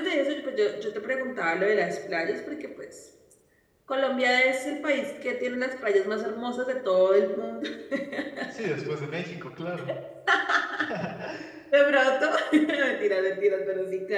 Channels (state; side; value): identical; both; correlation 1.00